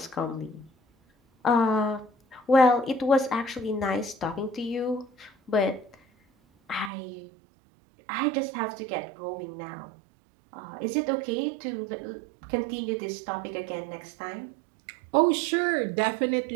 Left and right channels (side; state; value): left; drops out; at 6.9 s